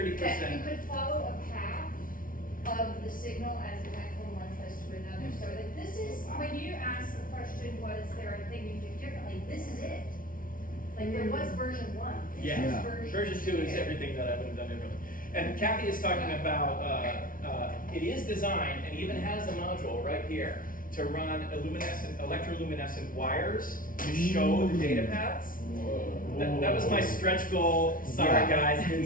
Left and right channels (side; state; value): right; late; 0.40 ms